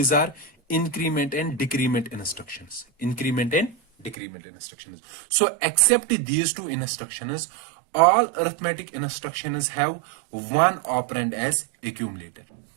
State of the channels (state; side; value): drops out; left; at 4.2 s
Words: are increment and decrement instructions. Increment and decrement instructions. So except these two instructions, all arithmetic instructions have one operand as accumulator.